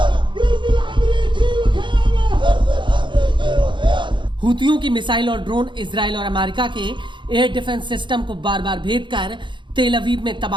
हूतियों की मिसाइल और ड्रोन इजराइल और अमेरिका के एयर डिफेंस सिस्टम को बार बार भेद कर तेल अवीव में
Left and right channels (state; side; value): late; left; 0.23 ms